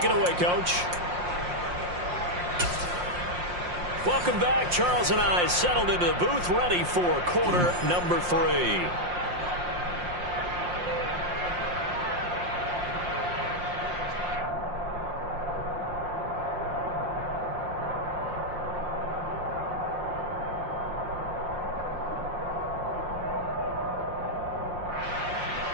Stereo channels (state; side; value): late; left; 5.6 ms